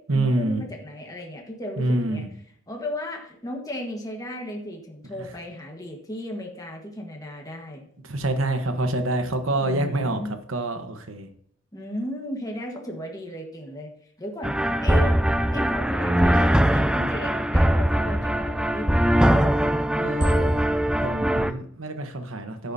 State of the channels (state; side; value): normal; both; correlation 0.84